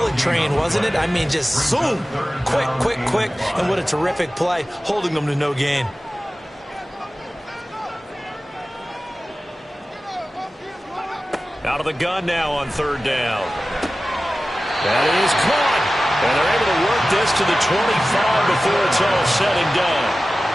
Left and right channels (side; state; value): both; normal; correlation 0.96